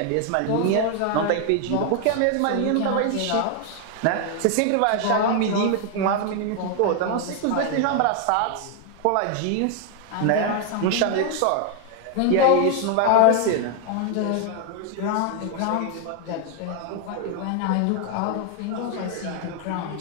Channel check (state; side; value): different; both; correlation 0.00